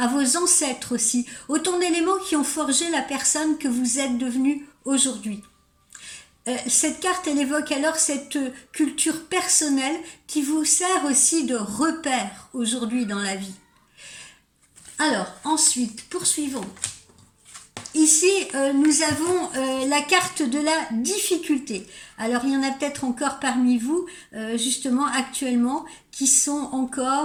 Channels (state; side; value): identical; both; correlation 1.00